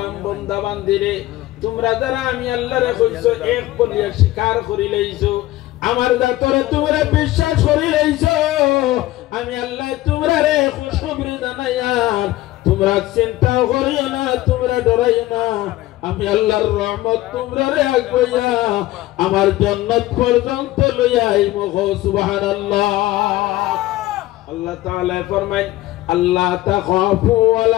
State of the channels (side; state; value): right; quieter; 16.5 dB